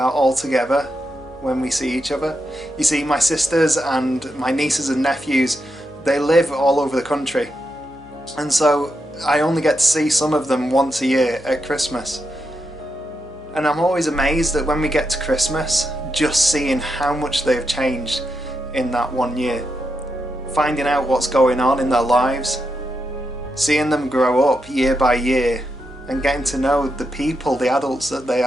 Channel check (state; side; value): noise; left; hum, 25 dB below the sound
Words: all together, when we see each other. You see, my sisters and my nieces and nephews, they live all over the country. And so I only get to see some of them once a year at Christmas. And I'm always amazed that when we get to Christmas, just seeing how much they've changed in that one year. Finding out what's going on in their lives, seeing them grow up year by year, and getting to know the people, the adults that they